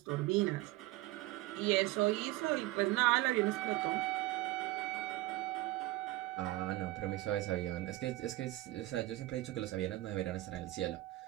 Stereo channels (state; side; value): quieter; left; 18.1 dB